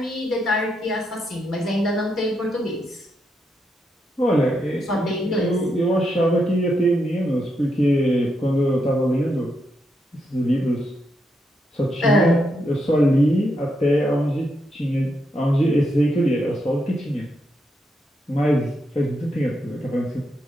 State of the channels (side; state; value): both; normal; correlation 0.81